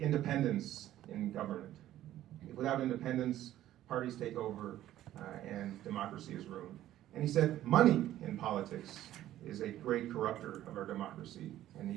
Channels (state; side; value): quieter; left; 13.3 dB